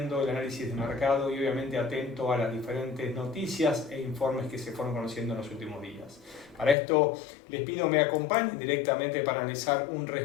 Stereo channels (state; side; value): drops out; right; at 6.8 s